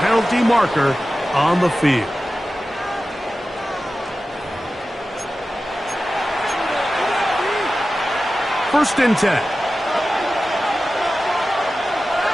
marker on the field. First and 10.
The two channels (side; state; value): both; normal; correlation 0.94